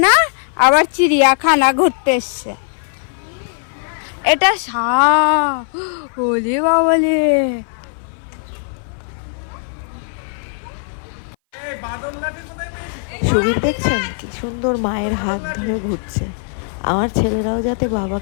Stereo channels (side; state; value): right; silent; 60 dB below the other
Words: না আবার চিড়িয়াখানা ঘুরতে এসছে। এটা ওলে বাবালে সুবীর দেখছেন কি সুন্দর মায়ের হাত ধরে ঘুরছে। আমার ছেলেরাও যাতে